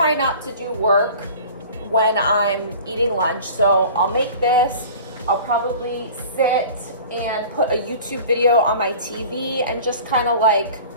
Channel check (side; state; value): both; inverted; correlation -0.42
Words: not to do work when I'm eating lunch. So I'll make this, I'll probably sit and put a YouTube video on my TV and just kind of like